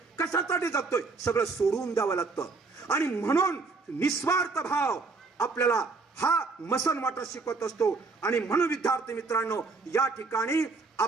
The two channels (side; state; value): left; quieter; 4.1 dB